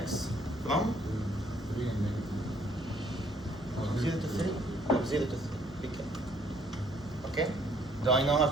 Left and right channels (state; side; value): noise; left; hum, 20 dB below the sound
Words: from 3 and negative. 0 to 3? From 0 to 3. Be careful. Okay? Do I know how